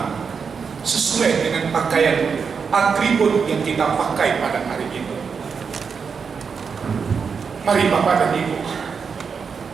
sesuai dengan pakaian atribut yang kita pakai pada hari ini. Mari bapak dan ibu,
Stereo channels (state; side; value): quieter; left; 5.9 dB